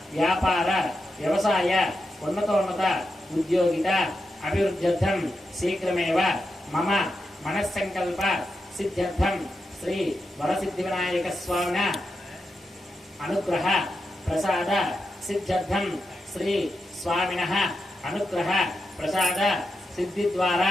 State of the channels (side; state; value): both; normal; correlation 0.87